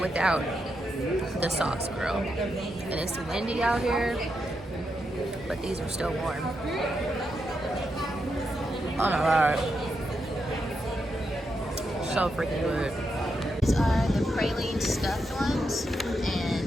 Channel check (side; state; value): both; normal; correlation 0.84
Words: without the sauce, girl. And it's windy out here, but these are still warm. Oh my god. So freaking good. These are the praline stuffed ones, and